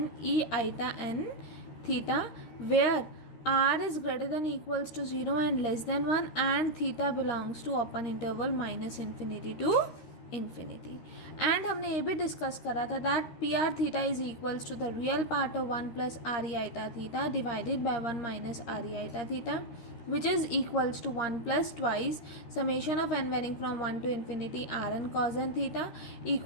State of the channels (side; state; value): right; late; 13 ms